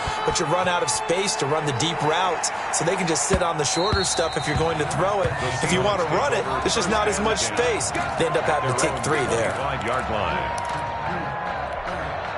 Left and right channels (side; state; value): both; identical; correlation 1.00